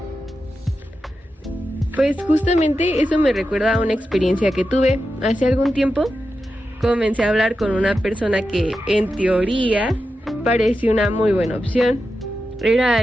Pues justamente eso me recuerda a una experiencia que tuve hace algún tiempo. Comencé a hablar con una persona que en teoría parecía una muy buena opción. Era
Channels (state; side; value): normal; both; correlation 0.90